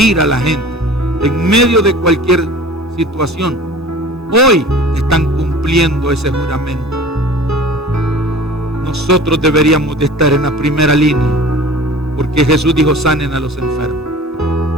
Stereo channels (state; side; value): normal; both; correlation 0.43